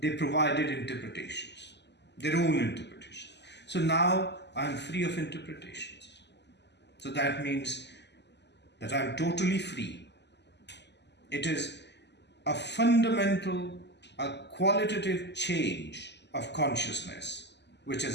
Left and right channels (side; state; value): right; late; 0.50 ms